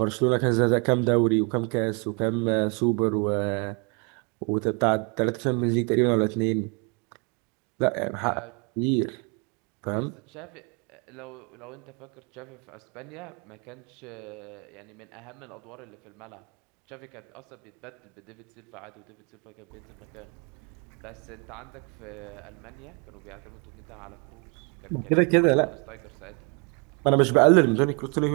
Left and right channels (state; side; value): quieter; left; 34.1 dB